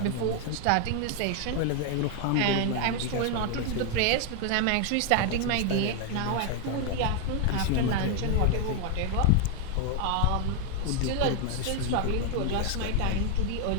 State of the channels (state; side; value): different; both; correlation 0.00